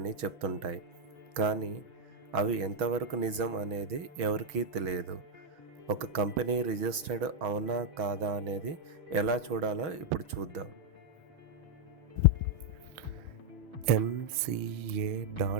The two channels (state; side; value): late; left; 6.1 ms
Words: చెప్తుంటాయి. కానీ అవి ఎంతవరకు నిజం అనేది ఎవరికీ తెలియదు. ఒక కంపెనీ రిజిస్టర్డ్ అవునా కాదా అనేది ఎలా చూడాలో ఇప్పుడు చూద్దాం.